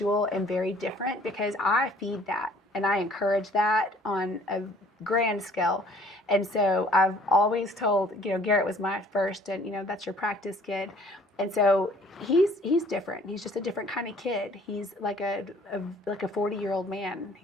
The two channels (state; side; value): normal; both; correlation 0.55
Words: and very different because I feed that and I encourage that on a grand scale. And so I've always told, Garrett was my first and, that's your practice kid. And so he's different. He's just a different kind of kid. He's like a 40-year-old man.